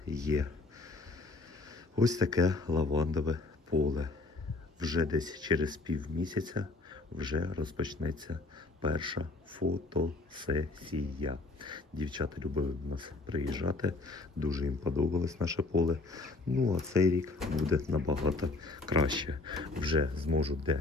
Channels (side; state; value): right; quieter; 3.4 dB